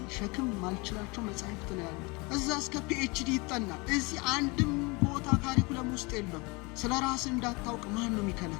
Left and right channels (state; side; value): quieter; right; 27.1 dB